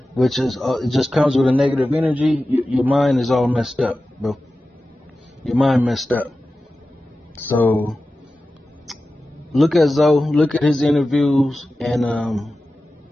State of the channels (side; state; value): both; normal; correlation 0.94